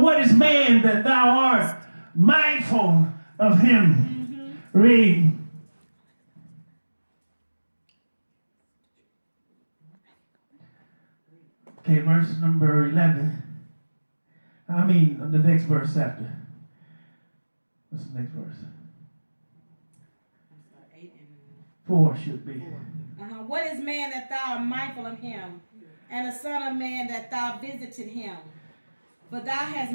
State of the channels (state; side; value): inverted; both; correlation -1.00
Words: is man that thou art mindful of him? Read. Okay, verse number 11. The next verse after. What's the next verse? 4 should be. What is man that thou art mindful of him, and the son of man that thou visited him? But thou hast